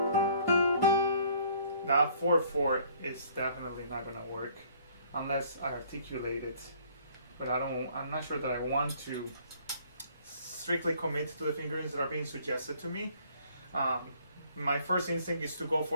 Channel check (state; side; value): inverted; both; correlation -0.58